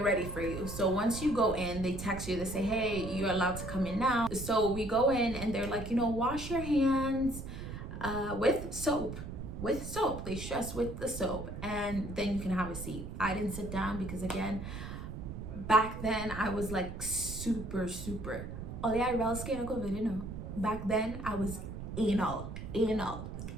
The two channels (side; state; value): right; noise; rumble, 8 dB below the sound